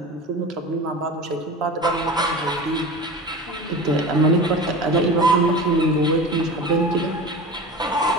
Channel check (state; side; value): normal; both; correlation 0.33